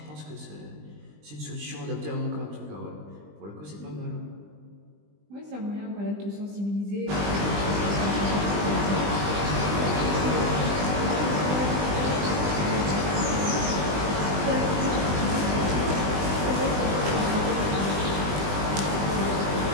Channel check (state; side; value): late; left; 20 ms